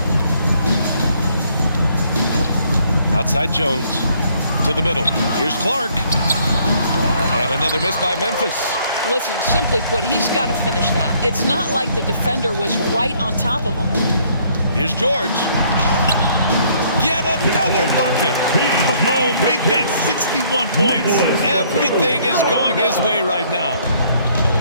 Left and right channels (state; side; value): inverted; both; correlation -0.65